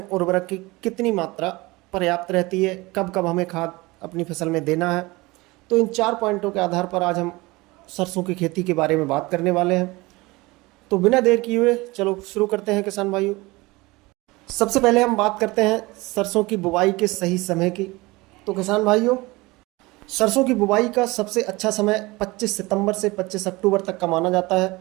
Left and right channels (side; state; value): left; quieter; 22.3 dB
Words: उर्वरक की कितनी मात्रा पर्याप्त रहती है, कब कब हमें खाद अपनी फसल में देना है। तो इन 4 पॉइंटों के आधार पर आज हम सरसों की खेती के बारे में बात करने वाले हैं। तो बिना देर किए हुए चलो शुरू करते हैं किसान भाइयों। सबसे पहले हम बात करते हैं सरसों की बुवाई के सही समय की। तो किसान भाइयों, सरसों की बुवाई का सबसे अच्छा समय 25 सितंबर से 25 अक्टूबर तक का माना जाता